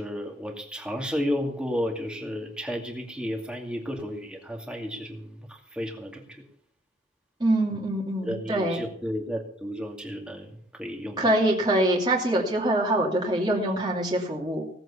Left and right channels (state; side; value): normal; both; correlation 0.62